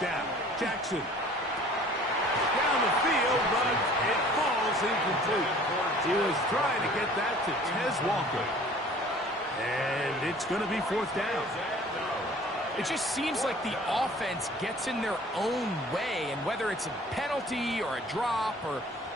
down, Jackson. Down the field, but it falls incomplete. He was trying to get that to Tez Walker. And it's going to be 4th down. It just seems like the offense gets in their own way, and whether it's a penalty or a drop or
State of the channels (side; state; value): both; normal; correlation 0.50